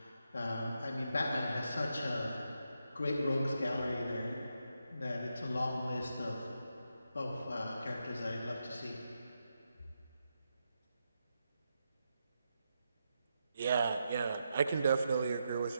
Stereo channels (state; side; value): inverted; both; correlation -0.84